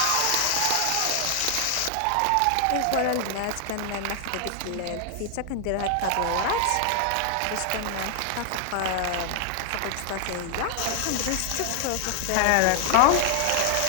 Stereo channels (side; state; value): both; different; correlation 0.00